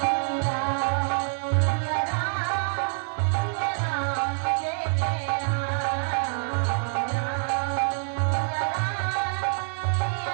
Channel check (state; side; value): silent; left; 61 dB below the other